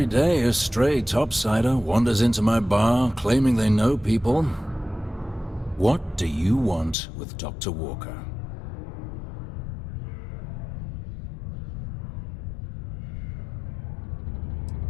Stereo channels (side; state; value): right; drops out; at 7.0 s